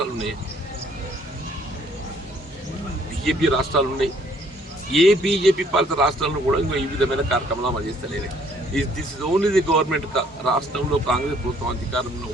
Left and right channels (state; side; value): normal; both; correlation 0.63